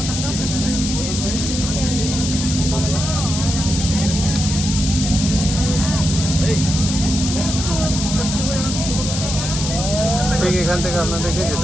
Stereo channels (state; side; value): noise; left; hiss, 4 dB below the sound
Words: ঠিক এখান থেকে আপনাদেরকে